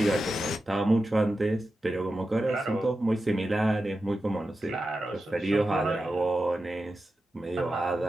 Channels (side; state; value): both; normal; correlation 0.91